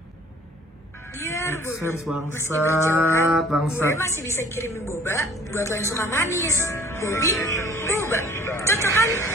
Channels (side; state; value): both; normal; correlation 0.52